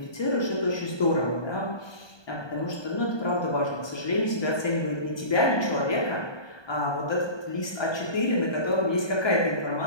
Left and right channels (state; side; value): late; right; 1.2 ms